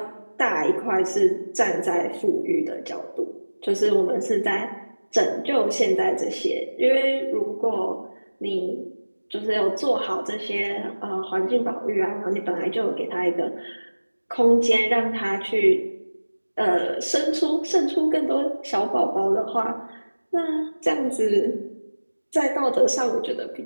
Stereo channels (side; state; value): both; inverted; correlation -1.00